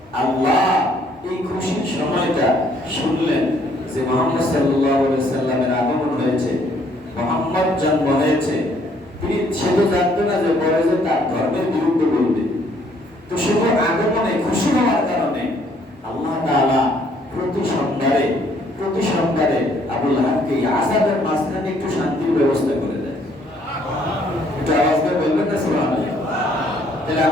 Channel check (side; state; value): both; normal; correlation 0.65